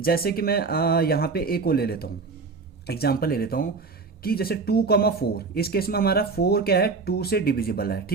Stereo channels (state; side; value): quieter; left; 4.5 dB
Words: कि मैं यहाँ पे एक को ले लेता हूँ, एग्जाम्पल ले लेता हूँ कि जैसे 2,4, इस केस में हमारा 4 क्या है, 2 से डिविजिबल है।